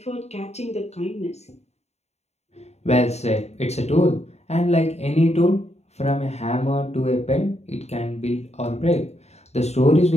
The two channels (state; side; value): late; right; 0.31 ms